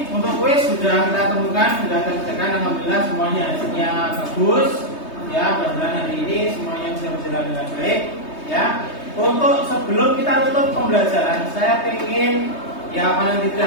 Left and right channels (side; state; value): right; late; 3.2 ms